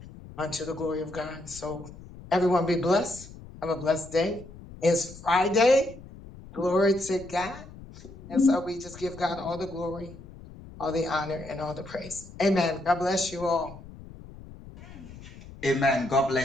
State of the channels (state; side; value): noise; left; rumble, 17 dB below the sound